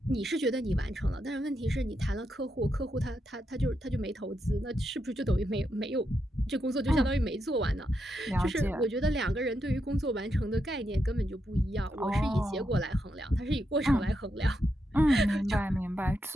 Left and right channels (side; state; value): both; normal; correlation 0.83